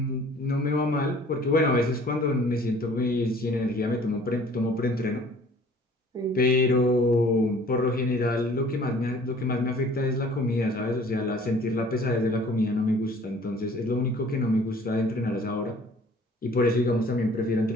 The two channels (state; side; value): normal; both; correlation 0.52